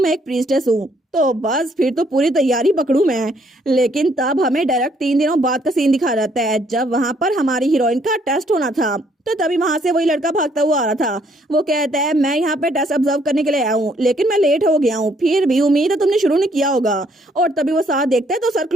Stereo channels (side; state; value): both; normal; correlation 0.67